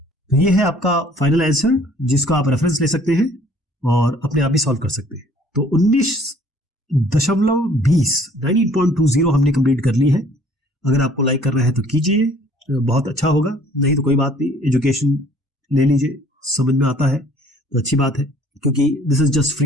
तो ये है आपका फाइनल आंसर, जिसको आप रेफरेंस ले सकते हैं और अपने आप भी सॉल्व कर सकते हैं। तो 19.20 हमने कंप्लीट कर ली है। अगर आपको लाइक करना है तो कीजिए, बहुत अच्छा होगा, नहीं तो कोई बात नहीं, एजुकेशन ले लीजिए, समझ में आता है तो अच्छी बात है, क्योंकि this is just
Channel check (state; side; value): normal; both; correlation 0.56